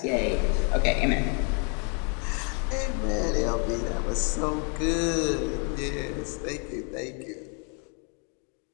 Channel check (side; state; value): right; quieter; 38.4 dB